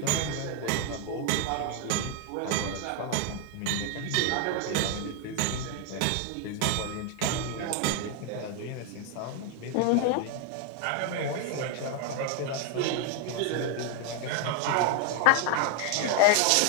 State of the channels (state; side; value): different; both; correlation 0.01